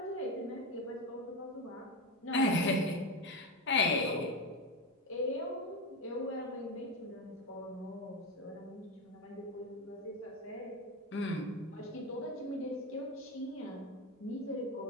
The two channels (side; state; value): both; normal; correlation 0.16